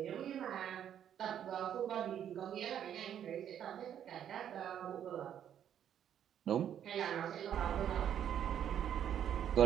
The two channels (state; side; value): quieter; left; 9.7 dB